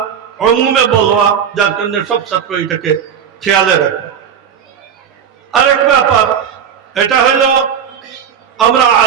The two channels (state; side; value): quieter; left; 8.0 dB